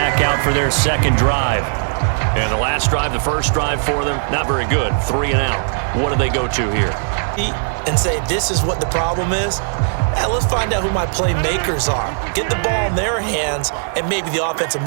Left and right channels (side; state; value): left; silent; 57 dB below the other